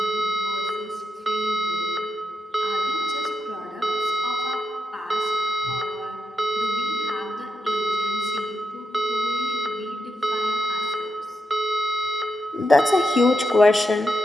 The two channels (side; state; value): both; normal; correlation 0.85